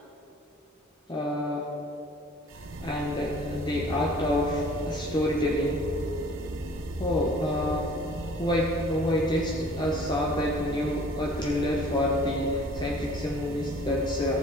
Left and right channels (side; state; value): both; normal; correlation 0.51